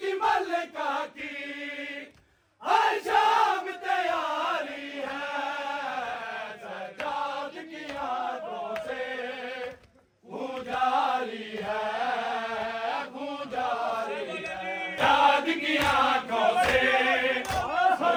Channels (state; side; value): identical; both; correlation 1.00